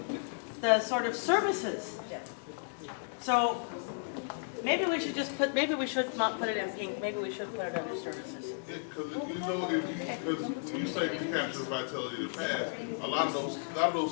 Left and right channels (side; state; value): right; silent; digital silence